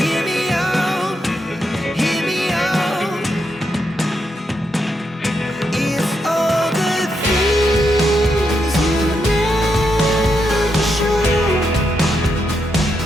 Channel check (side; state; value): both; normal; correlation 0.82